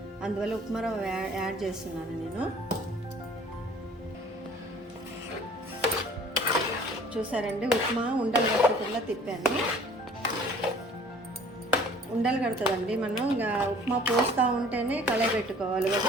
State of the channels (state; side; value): normal; both; correlation 0.51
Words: అందువల్ల ఉప్మా రవ్వ యాడ్ చేస్తున్నాను నేను. చూసారండి, ఉప్మా ఉండలు కట్టకుండా తిప్పాను. ఉండలు కడుతుందండి, మనం ఉప్మా పోస్తూ ఉంటేనే కలయబెట్టుకోవాలి. ఒక